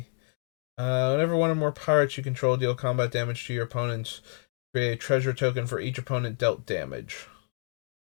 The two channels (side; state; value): right; silent; 55 dB below the other